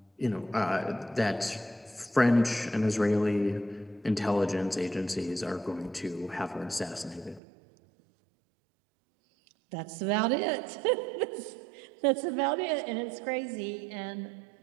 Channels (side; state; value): left; drops out; at 7.4 s